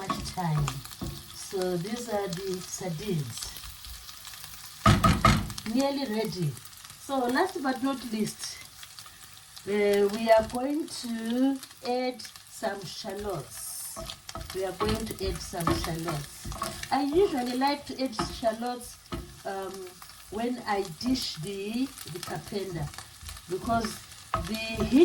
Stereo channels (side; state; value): both; identical; correlation 1.00